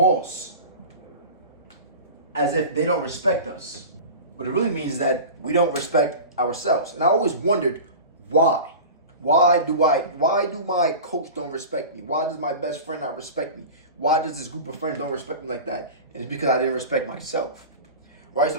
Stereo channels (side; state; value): both; inverted; correlation -0.33